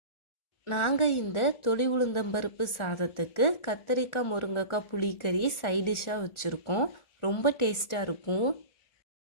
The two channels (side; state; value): right; late; 1.7 ms